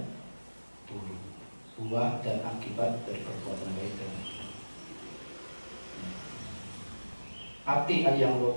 buruk, buah dan akibat dari perbuatan baik dan buruk. Ati ayang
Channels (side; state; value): both; inverted; correlation -1.00